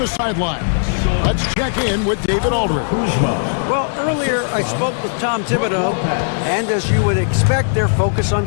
sidelines, let's check in with David Aldridge. Well, earlier I spoke with Tom Thibodeau, and as you would expect, their focus on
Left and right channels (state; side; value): silent; right; digital silence